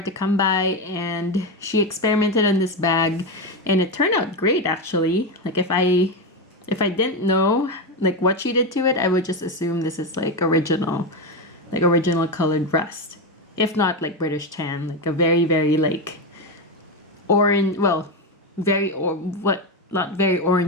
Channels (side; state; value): both; normal; correlation 0.12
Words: to come by, and she experimented on this bag and it turned out great actually. Like if I didn't know like what she did to it, I would just assume this is like original colored rust, if not like British tan, like a very like orange, well, not very